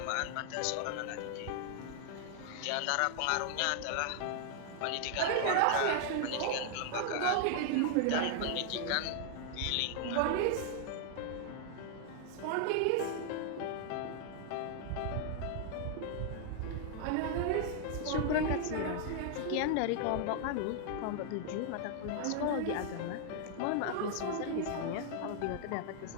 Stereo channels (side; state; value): both; different; correlation 0.00